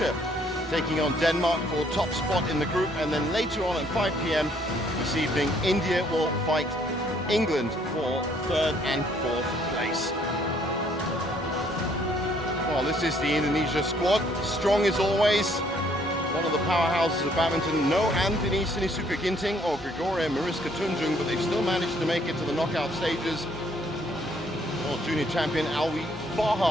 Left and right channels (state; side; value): normal; both; correlation 0.65